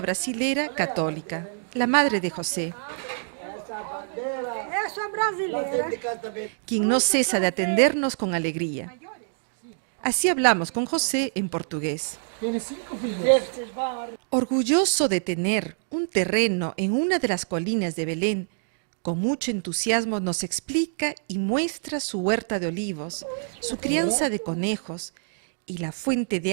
brasilera católica, la madre de José, quien no cesa de atendernos con alegría. Así hablamos con José en portugués. Orgulloso de tener un terreno en una de las colinas de Belén, con mucho entusiasmo nos explica y muestra su huerta de olivos, su crianza de conejos y la fuente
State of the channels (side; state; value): left; silent; digital silence